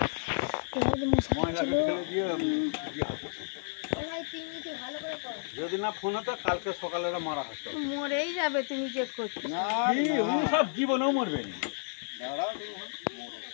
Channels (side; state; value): right; silent; 57 dB below the other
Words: যদি না ফোন হতো কালকে সকালে মারা হতো। মরেই যাবে তুমি যে করছো। না, উনি সব জীবনেও মরবে না। দাঁড়াও তুমি।